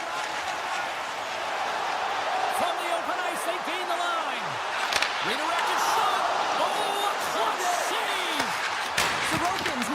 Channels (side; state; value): both; identical; correlation 1.00